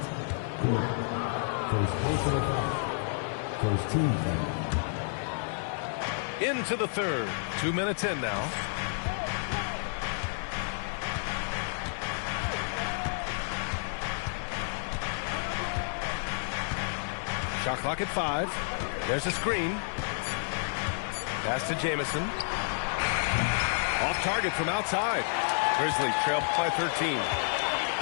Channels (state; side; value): silent; right; digital silence